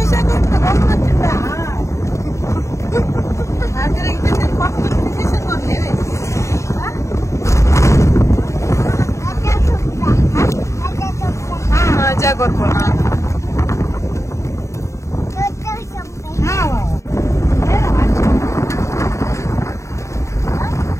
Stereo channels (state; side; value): late; right; 0.14 ms